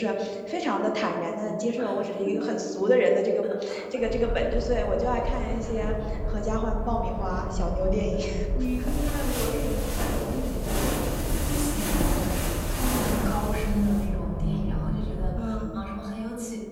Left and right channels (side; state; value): both; identical; correlation 1.00